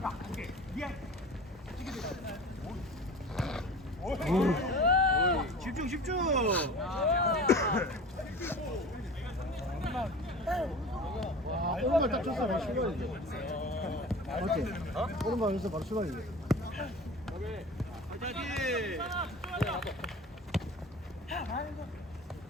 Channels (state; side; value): normal; both; correlation 0.37